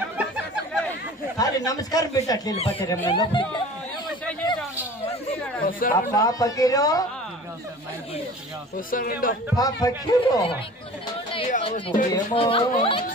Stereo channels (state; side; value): normal; both; correlation 0.42